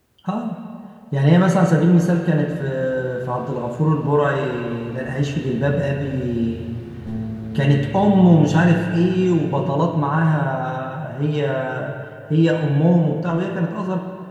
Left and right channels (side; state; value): both; identical; correlation 1.00